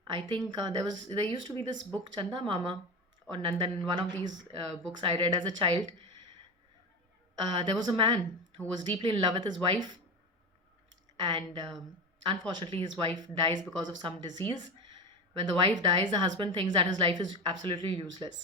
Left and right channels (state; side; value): normal; both; correlation 0.23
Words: I think there used to be this book Chanda Mama or Nandan. One of these books I read as a child. There was a man who was deeply in love with his wife, and unfortunately, his wife dies because of some disease. When the wife dies, the husband thinks that his life is absolutely